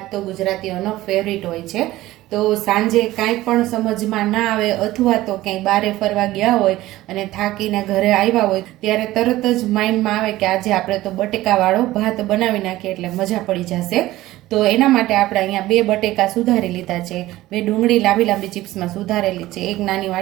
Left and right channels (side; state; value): left; quieter; 16.5 dB